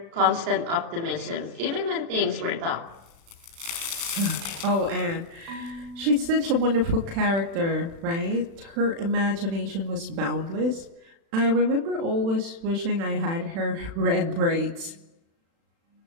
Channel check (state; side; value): late; left; 36 ms